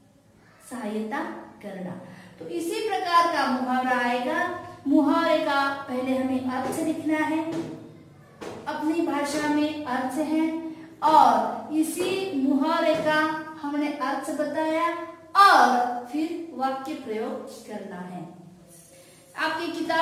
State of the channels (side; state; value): both; identical; correlation 1.00